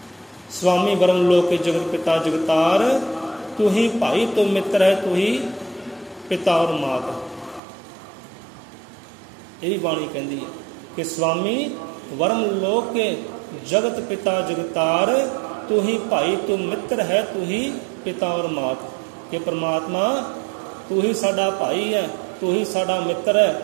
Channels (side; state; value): left; drops out; at 7.6 s